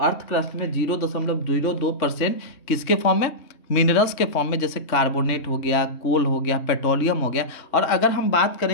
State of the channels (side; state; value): right; late; 3.2 ms